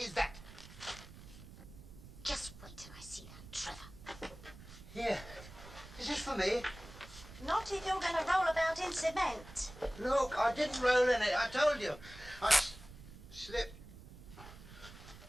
that. Just wait till I see that Trevor. Here. Is this for me? Not if you're going to roll about in cement. Look, I didn't roll in it. I told you. I slipped.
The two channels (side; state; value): right; noise; rumble, 17 dB below the sound